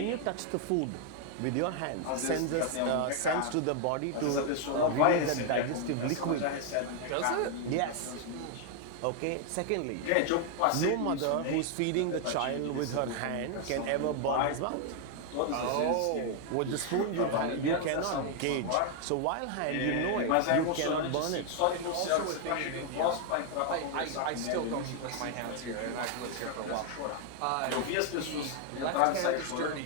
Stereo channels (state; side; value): different; both; correlation 0.00